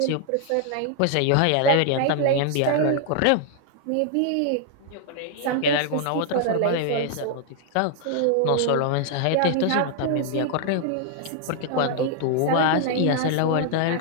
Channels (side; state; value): both; different; correlation 0.00